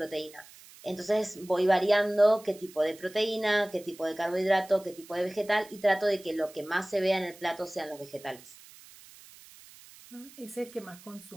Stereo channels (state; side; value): noise; right; hiss, 21 dB below the sound